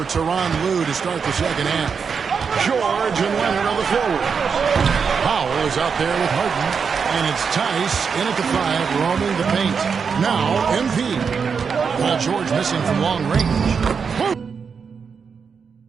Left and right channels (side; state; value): left; quieter; 6.0 dB